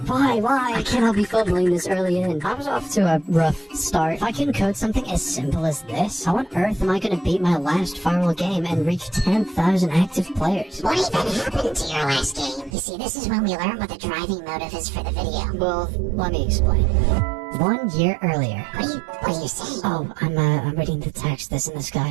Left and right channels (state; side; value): drops out; left; at 12.7 s